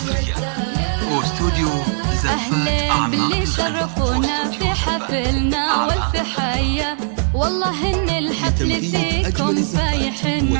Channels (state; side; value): silent; left; digital silence